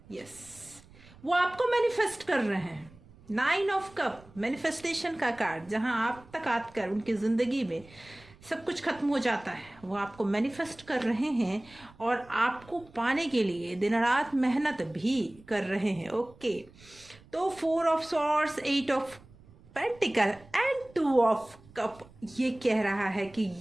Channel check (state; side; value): noise; right; rumble, 24 dB below the sound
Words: यस, वो आपको मैनिफेस्ट कर रहे हैं। 9 ऑफ कप, मैनिफेस्टेशन का कार्ड, जहां आप तक आकर उनकी ज़िंदगी में सब कुछ खत्म हो जाता है, वो आपको मैनिफेस्ट कर रहे हैं और आपको पाने के लिए दिन रात मेहनत भी कर रहे हैं। ओके, तो 4 of swords, 8 of pentacle and 2 of cup ये कह रहा है कि